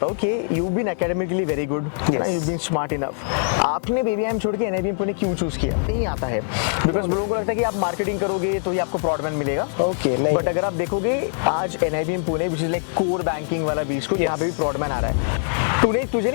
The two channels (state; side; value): silent; right; 64 dB below the other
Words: हूँ कि you been academically very good, you been smart enough, आपने बीबीआईएम छोड़ के एनआईबीएम पुणे क्यों चूज किया? नहीं आता है बिकॉज लोगों को लगता है कि आप मार्केटिंग करोगे तो ही आपको प्रॉडमैन मिलेगा। ओके, नहीं, बट अगर आप देखोगे आज NIBM Pune which is like core banking वाला बीच को यहाँ पे भी प्रॉडमैन आ रहा है। तुझे